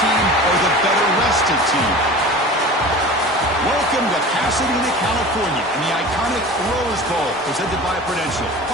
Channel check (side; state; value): both; normal; correlation 0.37